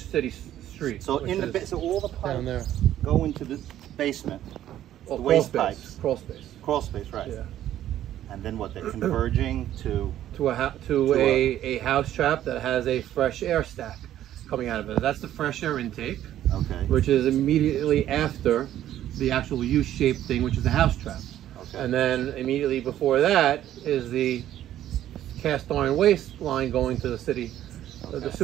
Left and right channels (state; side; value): quieter; left; 12.2 dB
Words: street. So in the so all the pipes down there go into the basement. Well, the waste pipes. Crawl space. Crawl space, right? Yeah. And then what? They're converging to a house trap that has a fresh air stack coming out of it. That's the fresh air intake. Okay. Which is immediately after the actual U-shaped thing, which is the house trap. Okay. And then immediately before that is the cast iron waste line going to the city, the